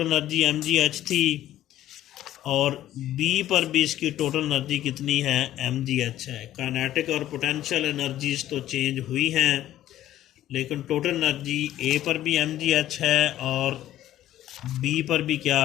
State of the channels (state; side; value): quieter; right; 13.2 dB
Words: एनर्जी mgh थी और बी पर भी इसकी टोटल एनर्जी कितनी है, mgh है। काइनेटिक और पोटेंशियल एनर्जीज तो चेंज हुई हैं, लेकिन टोटल एनर्जी ए पर भी mgh है और बी पर भी क्या